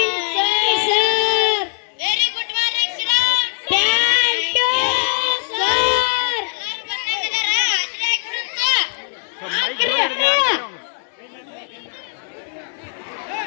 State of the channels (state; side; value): silent; right; digital silence